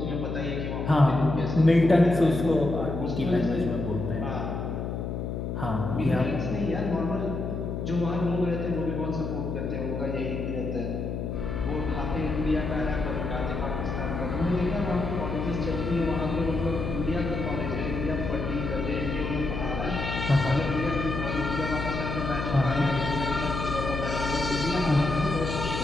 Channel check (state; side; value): noise; left; hum, 4 dB below the sound